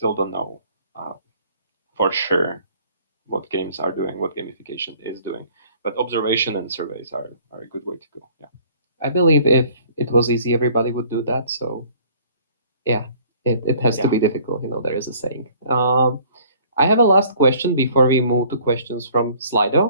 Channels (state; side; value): inverted; both; correlation -0.55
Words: don't know for sure what games are doing, what gamification is doing. But observation and surveys are a good way to go. Yeah. I believe if it was easy, everybody would do that. So yeah, it has to be difficult. There is a saying. I have a last question before we move to questions from